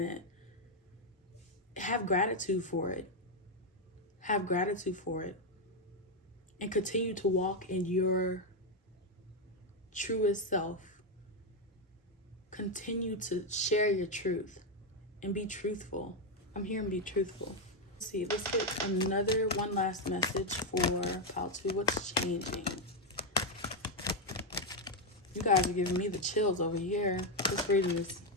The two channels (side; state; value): both; normal; correlation 0.04